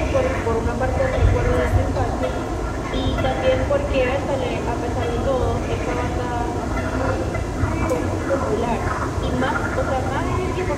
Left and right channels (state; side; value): identical; both; correlation 1.00